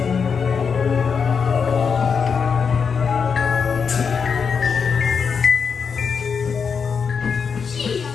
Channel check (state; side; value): quieter; right; 6.1 dB